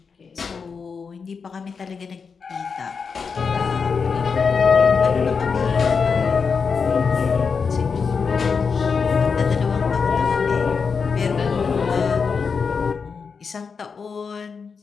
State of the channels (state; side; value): quieter; right; 5.5 dB